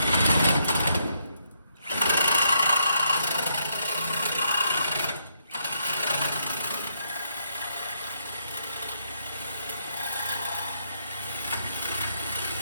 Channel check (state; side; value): inverted; both; correlation -0.75